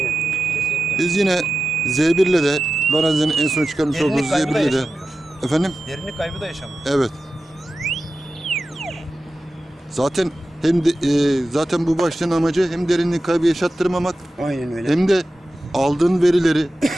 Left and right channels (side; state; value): both; normal; correlation 0.93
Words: Kesinlikle. Biz yine Z1 ile de Lorenzo'nun en son çıkarmış olduğu Derinlik kaybı da Z1 ile de yaşamıyor. efendim Derinlik kaybı da yaşamıyor. evet. Zaten hem de, zaten bu başlığın amacı hem derinlik kaybı yaşattırmamak Aynen öyle. hem de aldığın verileri